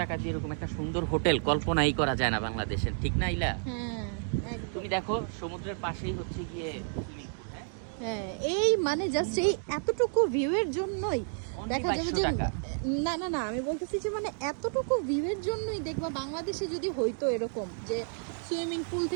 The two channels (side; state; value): left; silent; 57 dB below the other